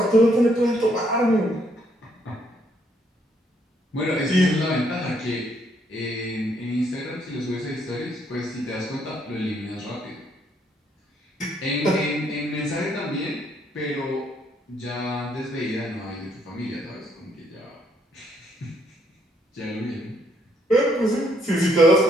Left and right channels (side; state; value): both; normal; correlation 0.70